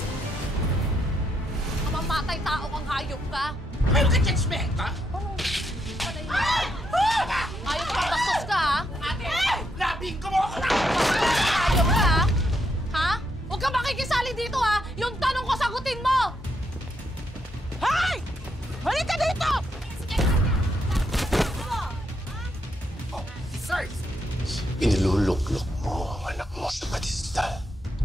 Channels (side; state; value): both; normal; correlation 0.78